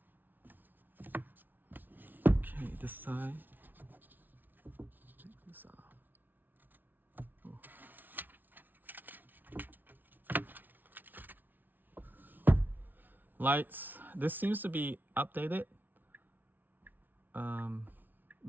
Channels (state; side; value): late; left; 0.087 ms